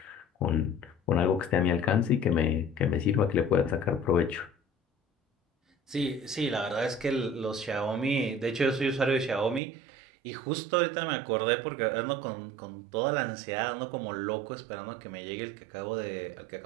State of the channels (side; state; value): left; drops out; at 9.6 s